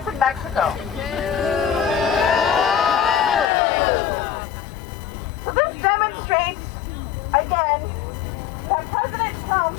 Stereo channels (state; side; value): drops out; right; at 3.5 s